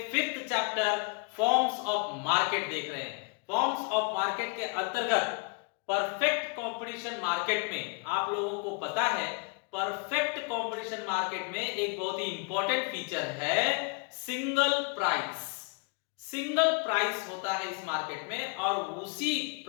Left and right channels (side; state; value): right; quieter; 34.8 dB